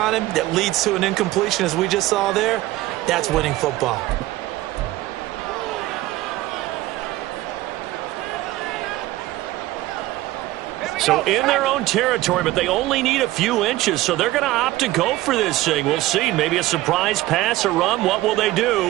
him that leads to an incompletion, as we just saw there, that's winning football. So in their own territory, but they only need a few inches, so they're going to opt to go for this thing. We'll see. Maybe a surprise pass, a run. What will they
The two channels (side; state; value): left; quieter; 17.0 dB